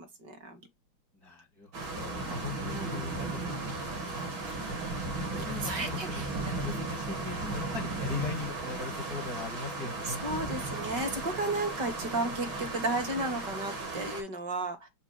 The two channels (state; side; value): late; left; 5.2 ms